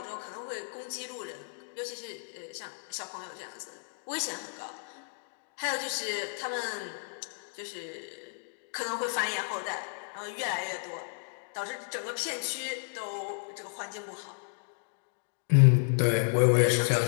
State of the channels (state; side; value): silent; right; digital silence